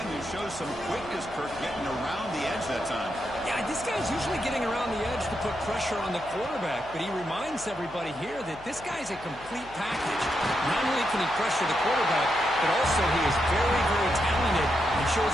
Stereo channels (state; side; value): noise; left; hum, 19 dB below the sound